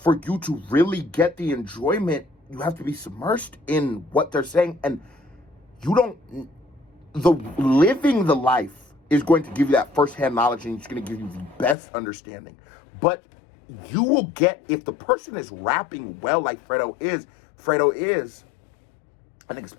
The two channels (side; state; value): right; drops out; at 11.8 s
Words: you to really get the enjoyment, you have to be submersed in what they're saying. And you don't, living the life is going to give you that firsthand knowledge, and it's going to give you the best understanding. But you will get, if the person is rapping well like Fredo is, I think it